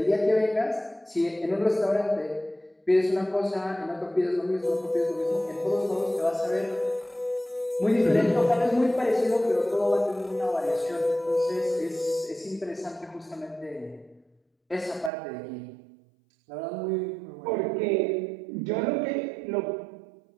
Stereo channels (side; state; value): left; drops out; at 15.1 s